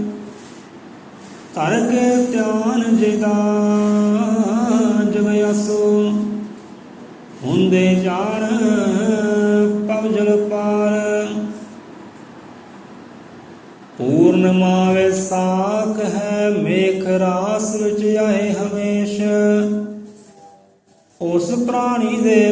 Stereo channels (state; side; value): identical; both; correlation 1.00